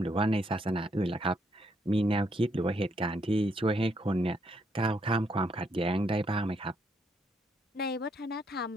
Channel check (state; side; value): normal; both; correlation 0.74